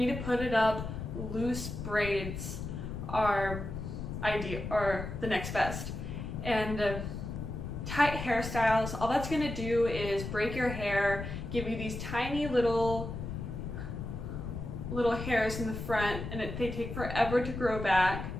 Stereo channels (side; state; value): left; noise; rumble, 6 dB below the sound